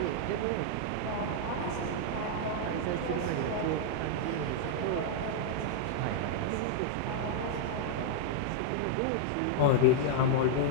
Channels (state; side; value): different; both; correlation -0.01